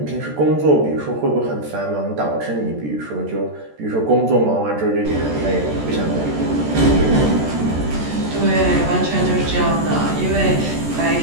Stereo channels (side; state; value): left; late; 14 ms